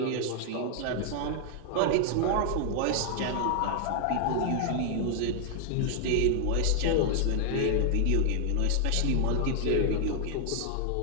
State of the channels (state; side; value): different; both; correlation 0.00